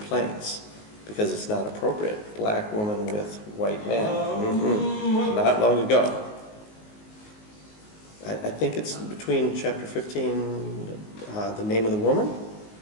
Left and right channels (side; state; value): right; late; 19 ms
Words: because it's not appropriate. Black woman with white man. Not long ago. I think it's between chapter 15, the name of the woman.